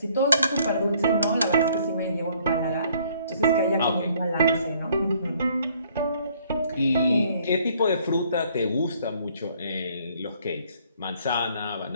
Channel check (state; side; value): inverted; both; correlation -0.62